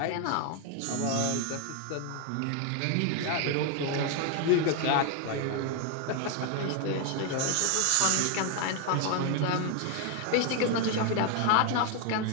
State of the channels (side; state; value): both; different; correlation 0.01